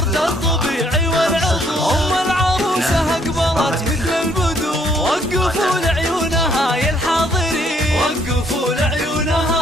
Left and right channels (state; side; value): normal; both; correlation 0.66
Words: الطبيعي والعطور. أم العروسة أقبلت مثل البدور، وقفوا لعيونها يا الحاضرين، وقفوا